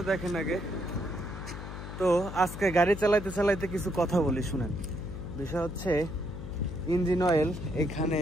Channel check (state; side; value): noise; left; hum, 9 dB below the sound